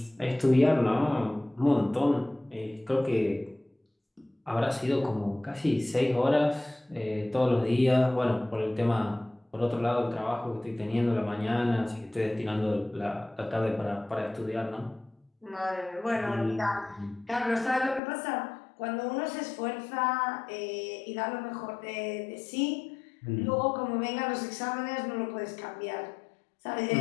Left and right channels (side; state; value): right; drops out; at 18.0 s